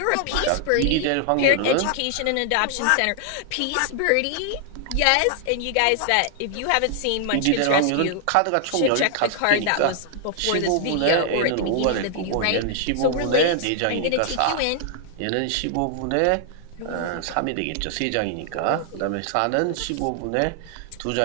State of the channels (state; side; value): different; both; correlation 0.00